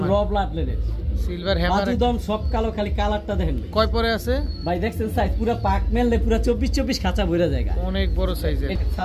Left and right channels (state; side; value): identical; both; correlation 1.00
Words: হ্যামার, র ব্লাড লেনের সিলভার হ্যামার। বাজুদম সব কালো, খালি কালারটা দেখেন ভাই। কয় পরে আছে ভাই? দেখছেন সাইজ পুরা পাক মেললে পুরা 24 খাঁচা ভরা জায়গা, অনেক বড় সাইজের।